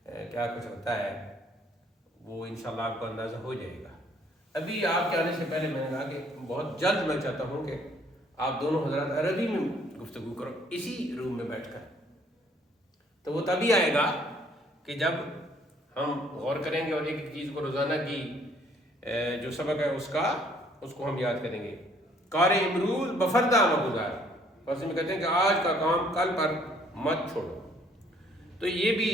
کیا کچھ ہوتا ہے، وہ انشاءاللہ آپ کو اندازہ ہو جائے گا۔ ابھی آپ کے آنے سے پہلے میں نے کہا کہ بہت جلد میں چاہتا ہوں کہ آپ دونوں حضرات عربی میں گفتگو کرو، اسی روم میں بیٹھ کر۔ تو وہ تبھی آئے گا کہ جب ہم غور کریں گے اور ایک ایک چیز کو روزانہ کی جو سبق ہے اس کو ہم یاد کریں گے۔ کار امروز بفردہ مگزار، بس میں کہتے ہیں کہ آج کا کام کل پر مت چھوڑو۔ تو یہ بھی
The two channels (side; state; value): both; normal; correlation 0.62